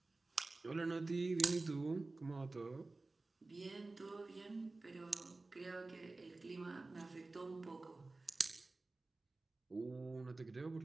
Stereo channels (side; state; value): left; quieter; 3.3 dB